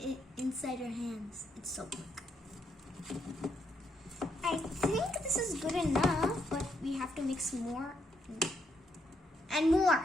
inside your hands, it's so quick. I think this is good enough, but we have to mix more and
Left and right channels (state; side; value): normal; both; correlation 0.76